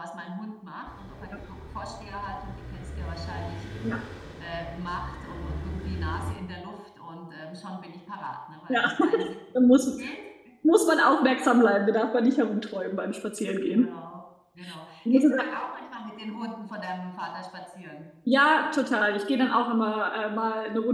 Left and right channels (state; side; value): identical; both; correlation 1.00